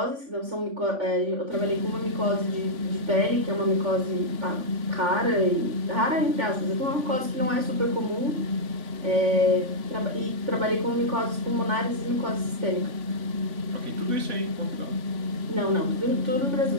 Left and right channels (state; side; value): late; left; 3.5 ms